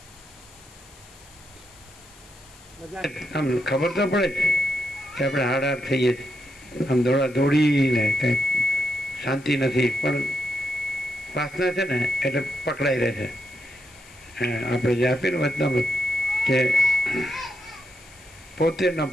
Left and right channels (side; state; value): left; noise; hiss, 24 dB below the sound